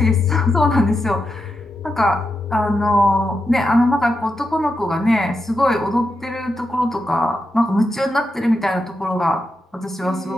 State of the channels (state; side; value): normal; both; correlation 0.86